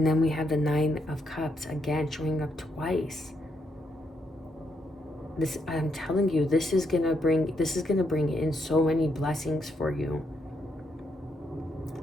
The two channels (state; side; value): normal; both; correlation 0.78